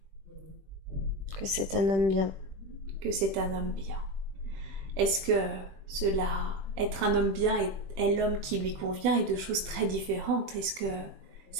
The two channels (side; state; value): left; late; 21 ms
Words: Que c'est un homme bien. Que c'est un homme bien. Est-ce que cela, être un homme bien est l'homme qui lui convient, et deux choses très différentes? Est-ce que